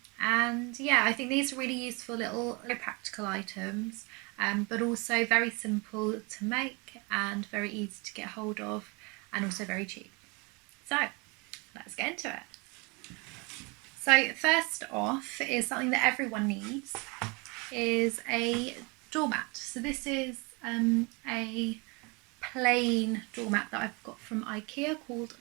yeah, I think these are really useful little practical items, but also very simple to make and very easy to get hold of, and also very cheap. So let's get into it. So first off is something that everyone needs, is a doormat. So this is a plain doormat that I've got from Ikea called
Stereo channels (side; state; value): left; quieter; 28.9 dB